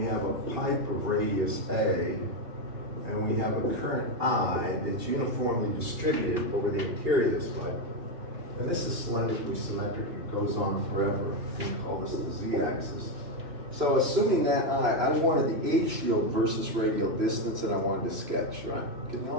have a pipe of radius A, and we have a current I that's uniformly distributed over the interior of this pipe. And this is cylindrically symmetric, it goes on forever. We call this the z-axis. So assuming that I wanted the H field versus radial distance, and I wanted to sketch, right? Can you all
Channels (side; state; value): left; late; 2.8 ms